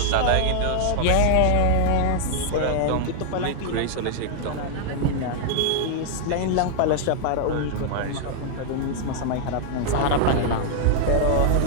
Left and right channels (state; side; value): different; both; correlation 0.00